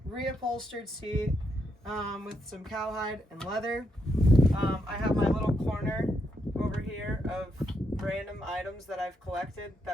reupholstered seat with some cowhide and leather. I have my little corner over here of random items that I've collected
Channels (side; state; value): both; normal; correlation 0.79